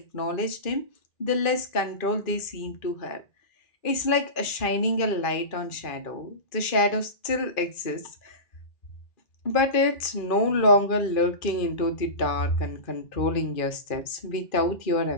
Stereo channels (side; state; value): right; late; 2.4 ms